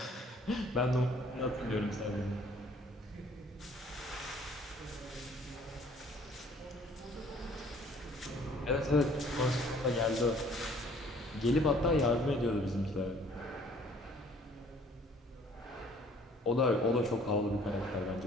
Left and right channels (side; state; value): both; normal; correlation 0.57